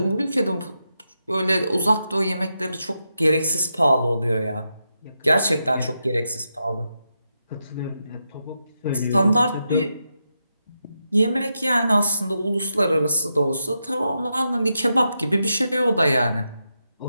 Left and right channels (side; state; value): both; inverted; correlation -0.86